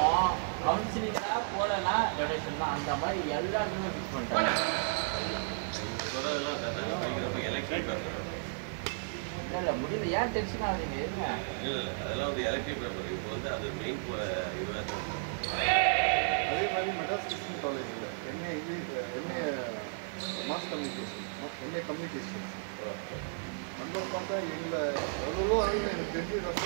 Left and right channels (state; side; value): silent; left; digital silence